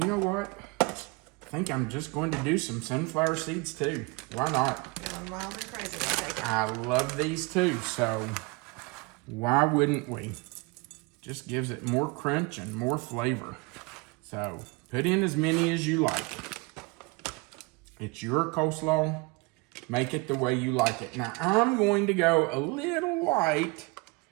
know what? I think I'm just going to do some sunflower seeds too. Why not? Going wild and crazy. I'll take it. I love these too, so why wouldn't we? Just gives it more crunch and more flavor. So put in as many as you like. It's your coleslaw. Make it the way you like it. Now I'm going to go a little light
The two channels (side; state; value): left; quieter; 26.5 dB